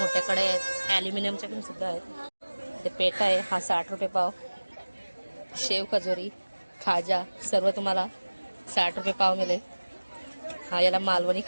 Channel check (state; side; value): inverted; both; correlation -1.00